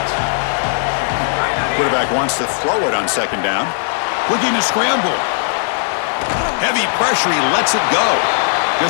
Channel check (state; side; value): silent; right; digital silence